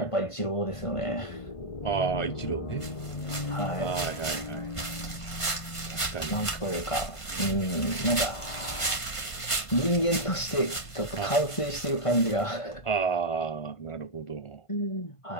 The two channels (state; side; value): late; right; 1.5 ms